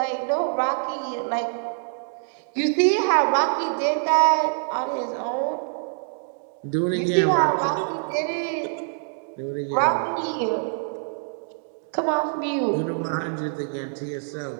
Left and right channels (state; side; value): silent; left; digital silence